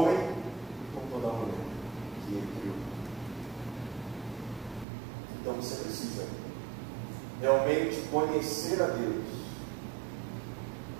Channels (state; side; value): drops out; left; at 4.9 s